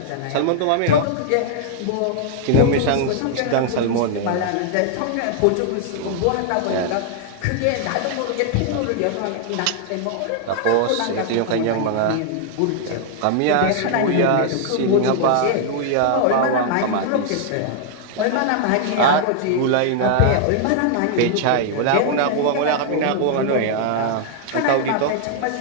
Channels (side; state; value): both; different; correlation 0.00